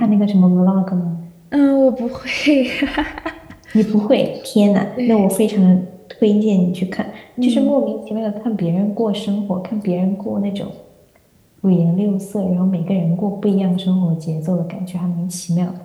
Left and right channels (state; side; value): identical; both; correlation 1.00